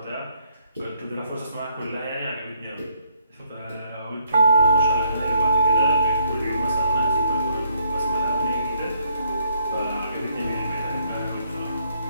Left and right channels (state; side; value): inverted; both; correlation -0.71